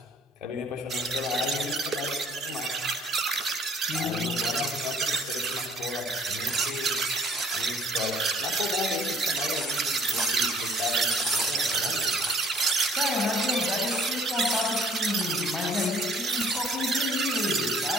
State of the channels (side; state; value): both; normal; correlation 0.59